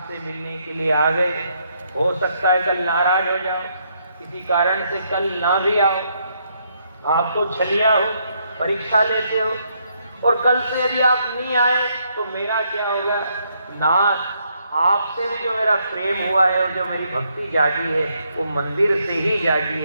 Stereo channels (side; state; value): both; inverted; correlation -0.74